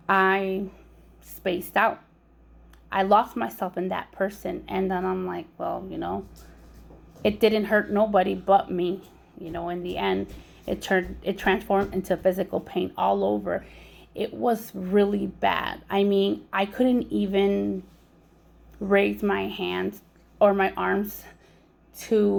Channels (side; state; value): both; identical; correlation 1.00